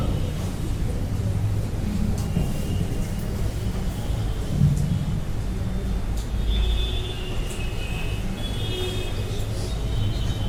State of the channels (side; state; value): both; identical; correlation 1.00